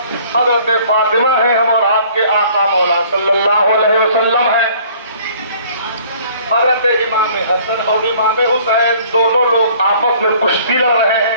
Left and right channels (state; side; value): inverted; both; correlation -0.55